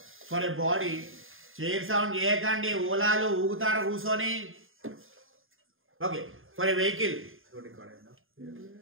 for a body, chair sound చేయకండి, ఓలాలు ఊగుతారు కూర్చొని. Okay, for a vehicle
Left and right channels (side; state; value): left; late; 0.59 ms